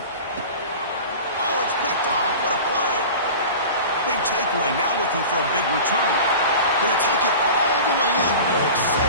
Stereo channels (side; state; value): both; inverted; correlation -0.35